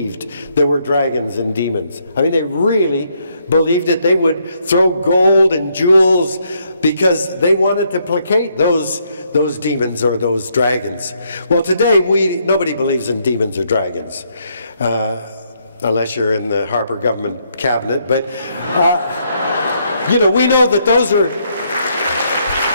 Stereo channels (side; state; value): both; inverted; correlation -0.73